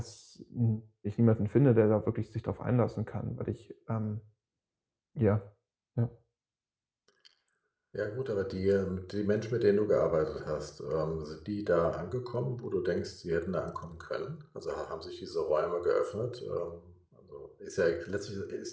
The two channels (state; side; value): identical; both; correlation 1.00